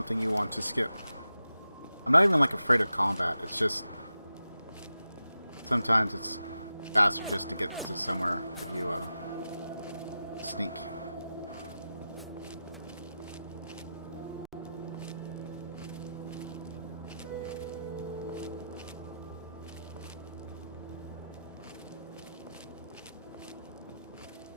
you want to skip. I'm not even like afraid of combat, it's just sometimes it's faster just to get to somewhere if you sneak.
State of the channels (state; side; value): inverted; both; correlation -0.90